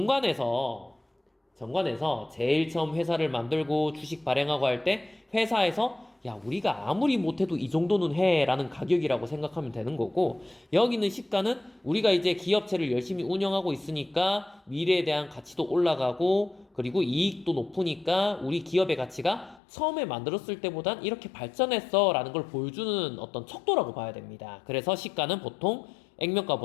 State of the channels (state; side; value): drops out; right; at 19.6 s